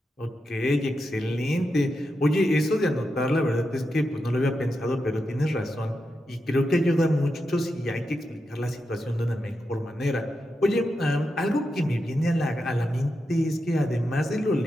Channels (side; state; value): both; normal; correlation 0.87